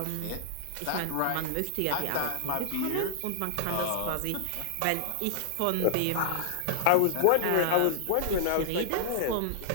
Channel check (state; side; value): different; both; correlation -0.01